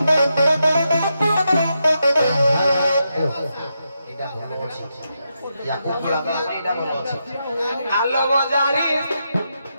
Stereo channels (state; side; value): inverted; both; correlation -0.85